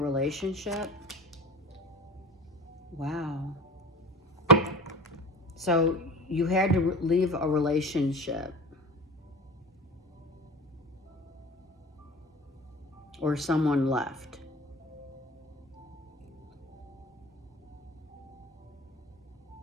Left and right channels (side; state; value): both; normal; correlation 0.35